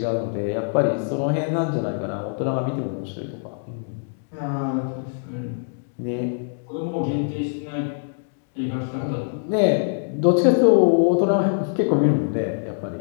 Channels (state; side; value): silent; right; digital silence